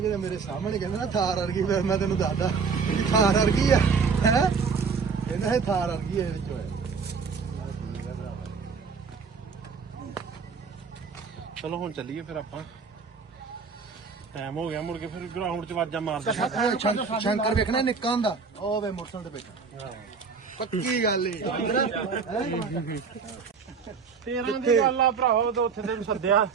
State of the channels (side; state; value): left; quieter; 5.4 dB